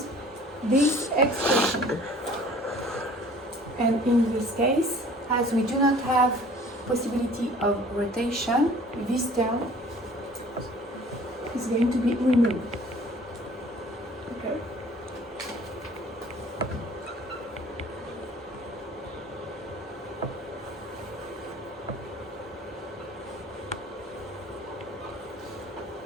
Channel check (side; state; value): both; normal; correlation 0.50